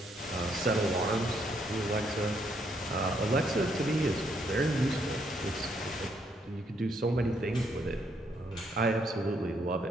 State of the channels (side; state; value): both; normal; correlation 0.73